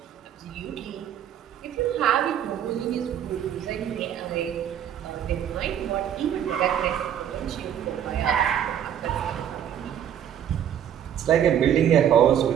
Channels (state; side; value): quieter; left; 9.7 dB